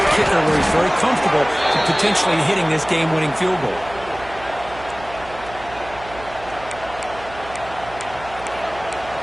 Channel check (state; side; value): noise; right; hum, 17 dB below the sound